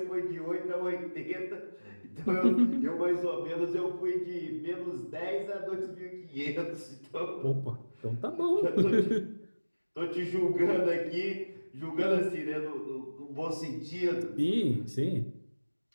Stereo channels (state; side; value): inverted; both; correlation -1.00